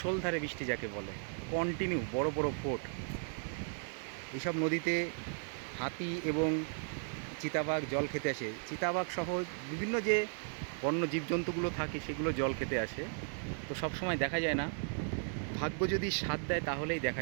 বৃষ্টি যাকে বলে, কন্টিনিউ বড় বড় ফোঁট। এইসব নদীতে হাতি এবং চিতাবাঘ জল খেতে আসে। চিতাবাঘ সহ বিভিন্ন যে বন্য জীবজন্তুগুলো থাকে সেগুলো জল খেতে আসে। তো সব সময় দেখা যায় না, ভাগ্য যদি সাথ দেয় তাহলেই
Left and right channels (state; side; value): silent; left; 54 dB below the other